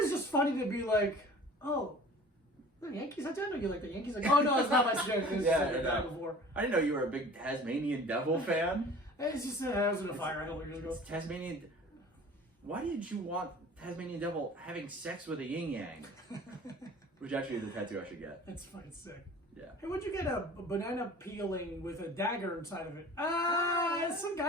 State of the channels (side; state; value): both; normal; correlation 0.45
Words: just funny to be like, oh, the Yankees. I didn't know you like the Yankees. Like, oh no, it's not my skin. Yeah, before. I didn't know you were a big Tasmanian Devil fan. It's just I was in a fire a couple years ago. Tasmanian. Why did you want Tasmanian Devil having sex with a yin yang? Which actually is a tattoo I should get. That's fucking sick. Yeah. Hey, what'd you get a banana peeling with a dagger inside of it? Some